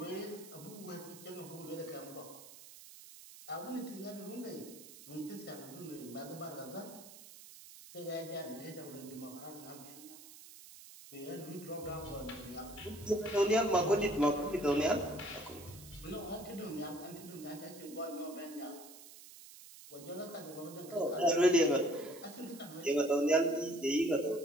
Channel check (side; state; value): right; noise; hiss, 17 dB below the sound